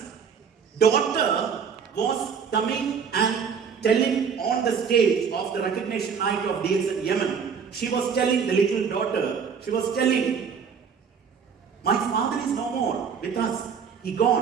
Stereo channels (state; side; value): quieter; left; 6.5 dB